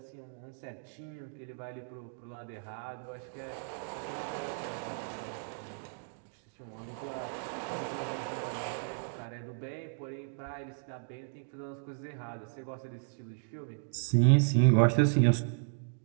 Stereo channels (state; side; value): silent; left; digital silence